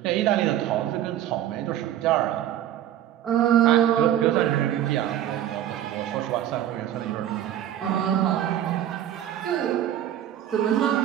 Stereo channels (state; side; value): quieter; left; 11.6 dB